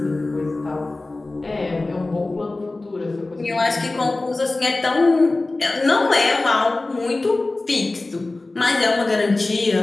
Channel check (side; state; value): right; quieter; 3.1 dB